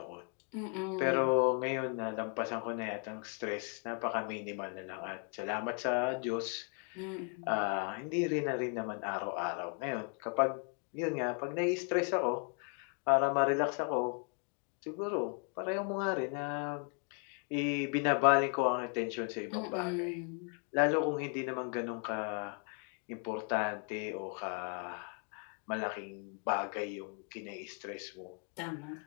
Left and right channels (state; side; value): quieter; right; 39.9 dB